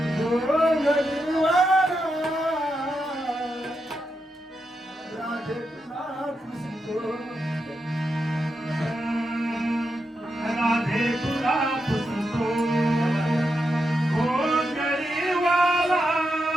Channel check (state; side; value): normal; both; correlation 0.86